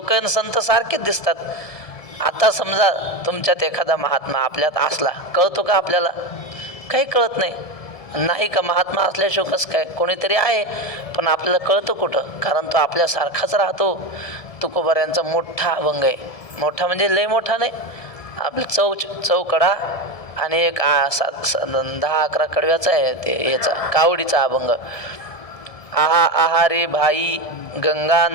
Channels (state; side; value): late; right; 1.7 ms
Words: आणि संत सारखेच दिसतात. आता समजा तुमच्यात एखादा महात्मा आपल्यात असला, कळतो का आपल्याला? काही कळत नाही. नाही का महात्मा असल्याशिवाय कसं काय? कोणीतरी आहे, पण आपल्याला कळतं कुठं? कारण तो आपल्यासारखाच राहतो. तुकोबाऱ्यांचा मोठा अभंग आहे. मोठा म्हणजे लय मोठा नाही, आपलं चौकडा आणि एक 10-11 कडव्याचा आहे ते याचा कावडीचा अभंग. आहा आहा रे भाई गंगा